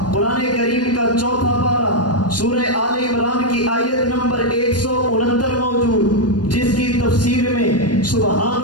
قرآن کریم کا چوتھا پارہ سورہ آل عمران کی آیت نمبر 169 موجود، جس کی تفسیر میں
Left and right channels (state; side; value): late; right; 0.69 ms